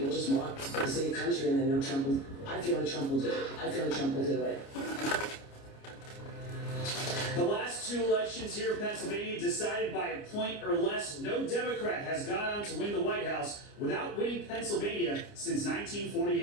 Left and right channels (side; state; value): right; late; 29 ms